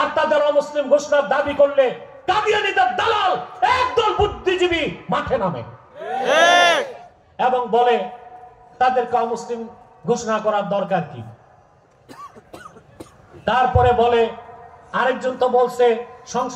তাদের অমুসলিম ঘোষণার দাবি করলে কাদিয়ানীদের দালাল একদল বুদ্ধিজীবী মাঠে নামে এবং বলে তাদেরকে অমুসলিম ঘোষণা করার দরকার কি। তারপরে বলে আরেকজন তো বলছে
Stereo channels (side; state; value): both; identical; correlation 1.00